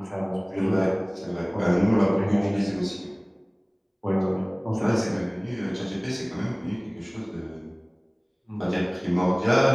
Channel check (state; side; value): identical; both; correlation 1.00